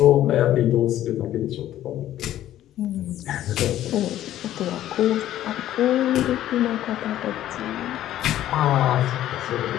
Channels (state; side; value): quieter; right; 12.8 dB